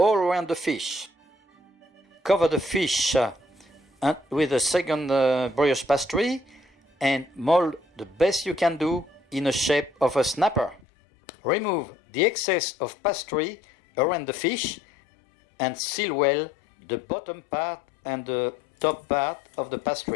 around the fish. Cover the fish with a second brioche pastry and mold the best you can do in the shape of a snapper. Remove the excess of pastry around the fish and seal well the bottom part and the top part of the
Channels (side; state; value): right; drops out; at 10.8 s